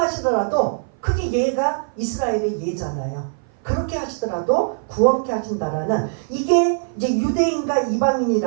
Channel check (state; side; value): silent; left; 57 dB below the other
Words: 그게 예가 이스라엘의 예잖아요. 그렇게 하시더라도 구원케 하신다라는 이게 이제 유대인과